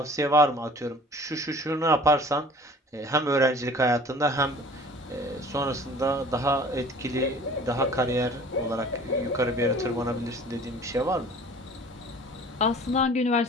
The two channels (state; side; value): normal; both; correlation 0.47